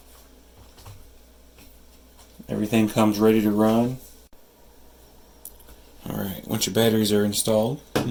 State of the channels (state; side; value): identical; both; correlation 1.00